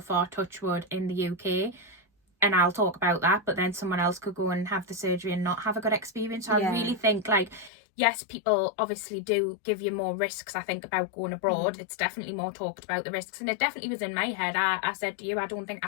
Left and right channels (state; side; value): drops out; right; at 7.7 s